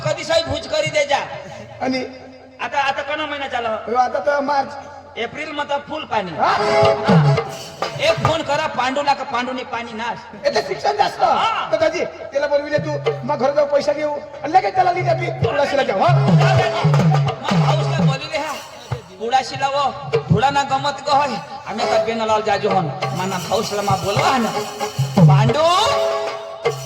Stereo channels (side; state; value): both; identical; correlation 1.00